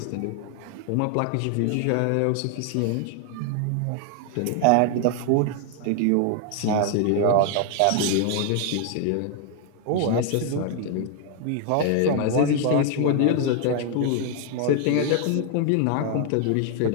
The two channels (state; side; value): different; both; correlation 0.00